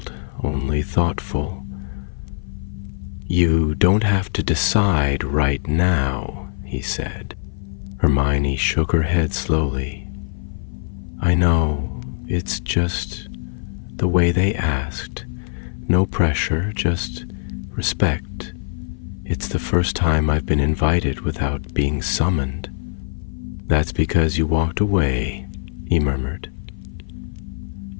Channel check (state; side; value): silent; right; 55 dB below the other